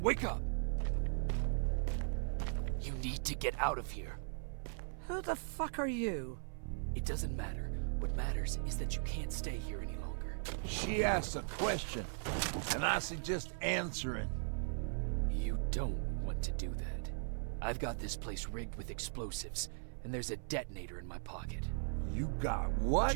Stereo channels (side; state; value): left; silent; 52 dB below the other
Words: wake up! You need to get out of here. Who the fuck are you? It doesn't matter. What matters is that you can't stay here any longer. She asked a question, and I suggest answering. You don't want to do that. I've got this place rigged with explosives, and there's a detonator in my pocket. You got what?